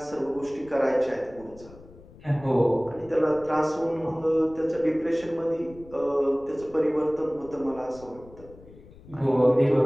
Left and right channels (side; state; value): left; noise; rumble, 21 dB below the sound